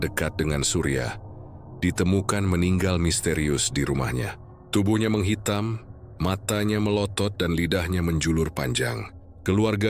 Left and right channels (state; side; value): identical; both; correlation 1.00